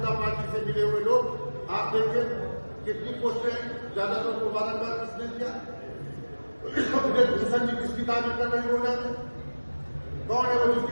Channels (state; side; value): inverted; both; correlation -1.00